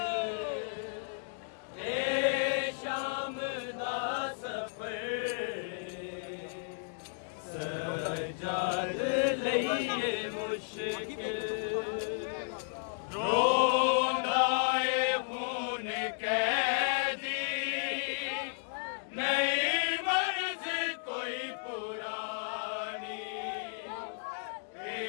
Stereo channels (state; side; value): silent; right; digital silence